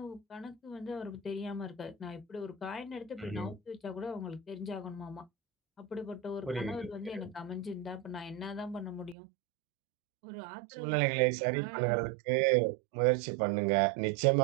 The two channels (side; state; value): left; drops out; at 9.2 s